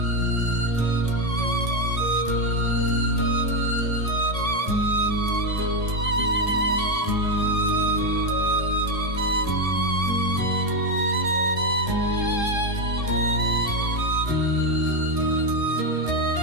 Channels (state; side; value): late; left; 2.5 ms